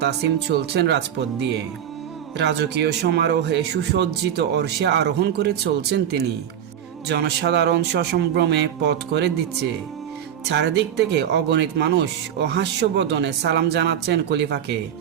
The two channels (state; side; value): quieter; left; 9.7 dB